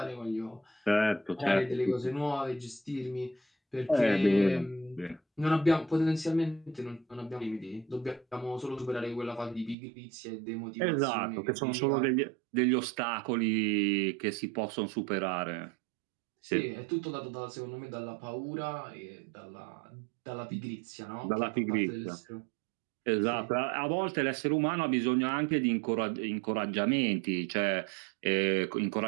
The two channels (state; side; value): drops out; left; at 9.8 s